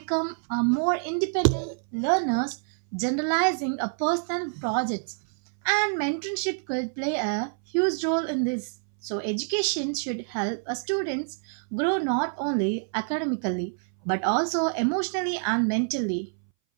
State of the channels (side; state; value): left; silent; 60 dB below the other